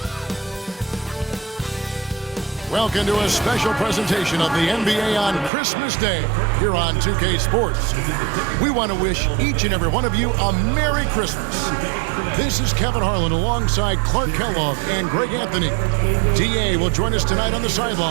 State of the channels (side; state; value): left; drops out; at 5.5 s